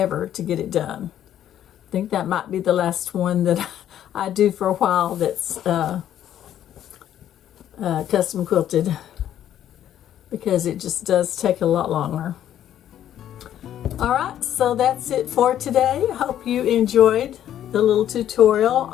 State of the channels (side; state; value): right; quieter; 11.0 dB